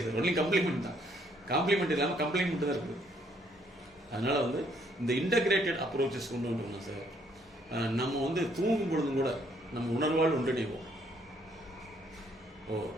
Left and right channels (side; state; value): both; normal; correlation 0.67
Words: சார், ஒன்லி கம்ப்ளிமெண்ட் தான். காம்ப்ளிமெண்ட் இல்லாமல் கம்ப்ளைண்ட் தான் இருக்குது. அதனால வந்து இந்த இன்டகிரேட்டட் அப்ரோச்சஸ் கொண்டு வந்துட்டோம்னா சார், நம்ம வந்து தூங்கும் பொழுதும் கூட நம்ம உணர்வால் ஒன்றிணைவோம். ஓ